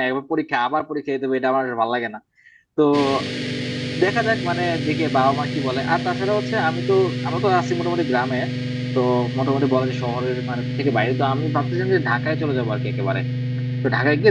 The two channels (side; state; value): both; identical; correlation 1.00